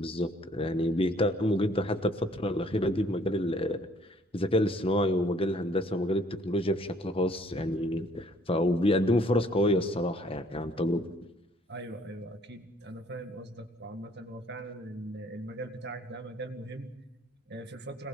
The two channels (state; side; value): normal; both; correlation 0.61